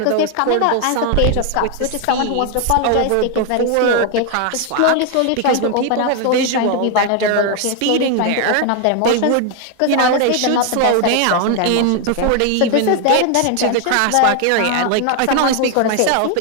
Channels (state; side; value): different; both; correlation 0.01